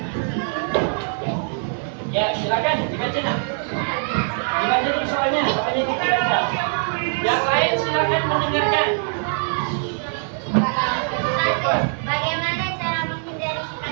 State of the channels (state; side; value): silent; left; 56 dB below the other